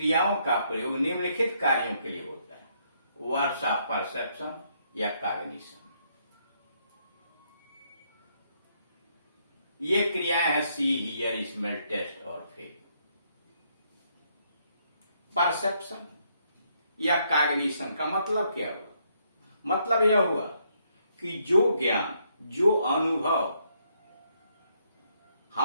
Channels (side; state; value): both; inverted; correlation -0.73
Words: का प्रयोग निम्नलिखित कार्यों के लिए होता है। वर्ब्स ऑफ परसेप्शन या कॉग्निशन। ये क्रियाएं हैं सी, हियर, स्मेल, टेस्ट और फील। परसेप्शन या कॉग्निशन का मतलब क्या हुआ? मतलब यह हुआ कि जो ज्ञान, जो अनुभव